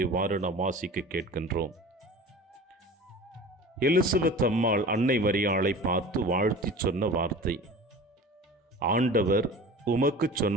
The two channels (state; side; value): normal; both; correlation 0.38